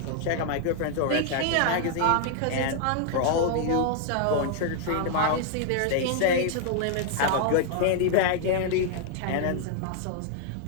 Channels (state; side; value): different; both; correlation 0.00